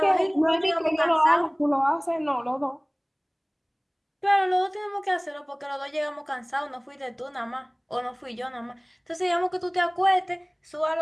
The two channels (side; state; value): both; identical; correlation 1.00